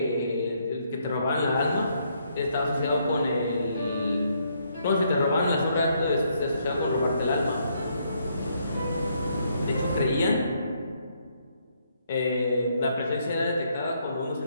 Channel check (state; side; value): inverted; both; correlation -0.73